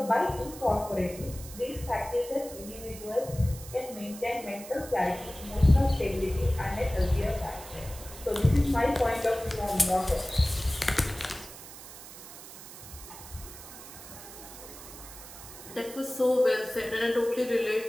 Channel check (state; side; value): noise; right; hiss, 15 dB below the sound